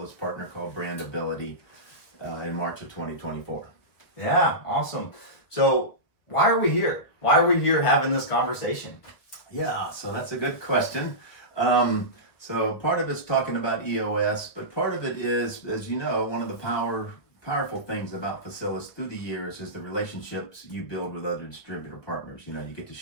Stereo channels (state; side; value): late; right; 1.8 ms